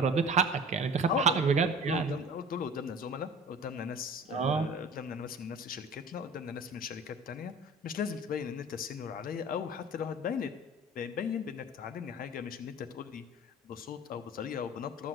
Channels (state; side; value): normal; both; correlation 0.42